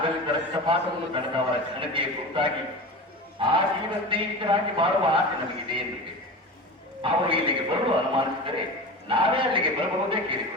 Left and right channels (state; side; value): normal; both; correlation 0.30